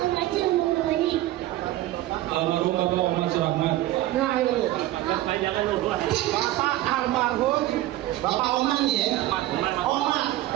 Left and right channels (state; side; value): quieter; left; 15.6 dB